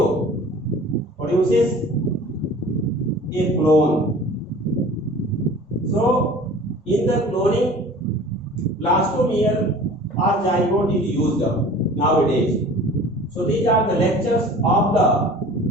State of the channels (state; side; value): normal; both; correlation 0.44